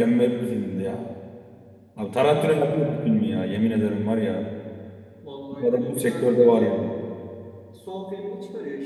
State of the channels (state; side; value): identical; both; correlation 1.00